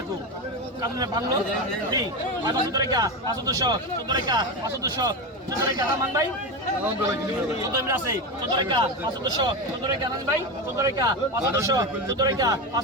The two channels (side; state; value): both; normal; correlation 0.17